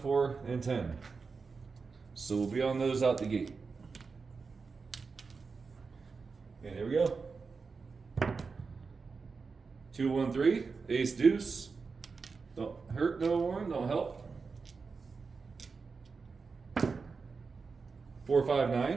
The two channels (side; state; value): left; quieter; 4.8 dB